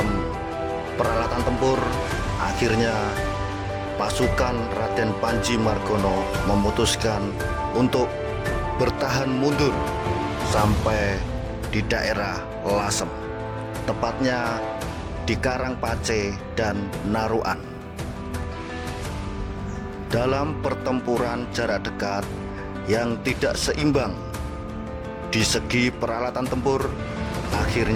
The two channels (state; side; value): identical; both; correlation 1.00